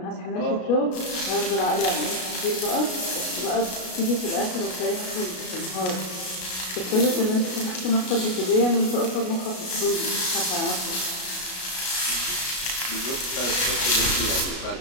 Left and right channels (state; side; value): late; right; 33 ms